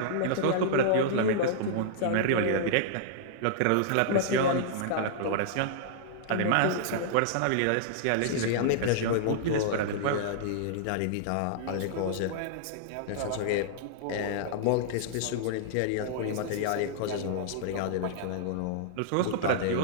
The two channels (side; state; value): both; different; correlation -0.01